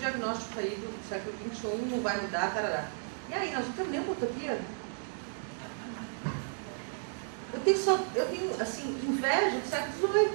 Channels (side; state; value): left; silent; digital silence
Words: aí do século XXI, não vai mudar, tarará. E aí, nós não temos nenhuma utopia? Eu tenho assim, inveja do século